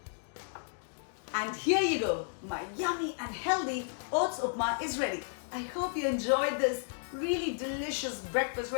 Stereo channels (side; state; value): right; silent; digital silence